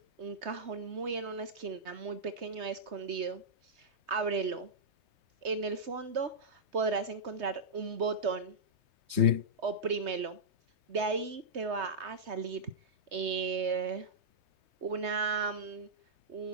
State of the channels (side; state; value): left; late; 3.2 ms